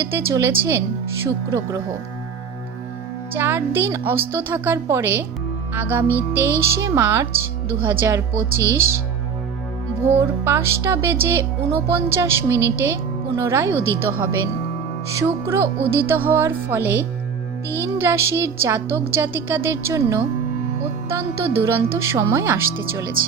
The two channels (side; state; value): left; quieter; 6.4 dB